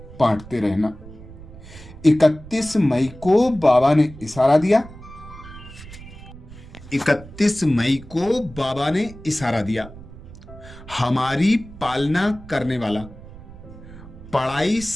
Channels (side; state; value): right; noise; rumble, 17 dB below the sound